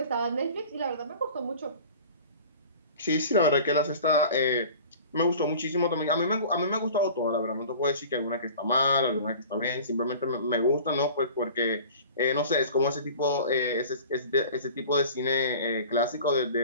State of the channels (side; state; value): both; inverted; correlation -0.43